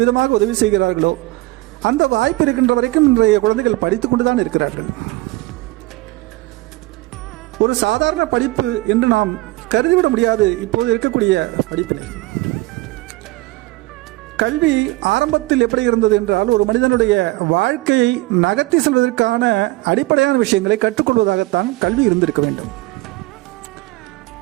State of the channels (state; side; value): quieter; left; 20.5 dB